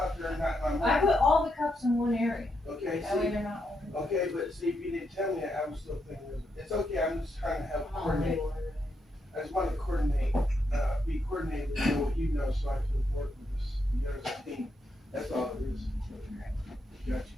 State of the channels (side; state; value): both; normal; correlation 0.81